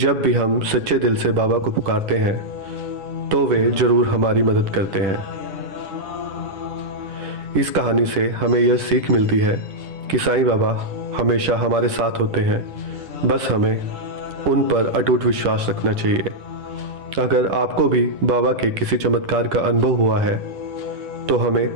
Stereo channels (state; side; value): late; left; 10 ms